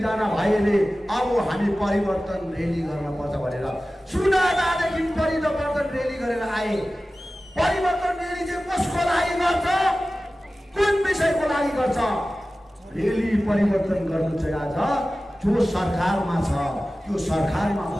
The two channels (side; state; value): both; normal; correlation 0.96